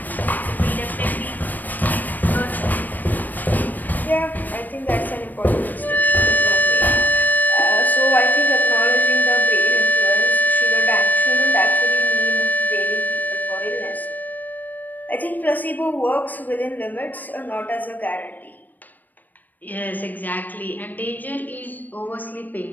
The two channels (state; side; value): late; right; 0.087 ms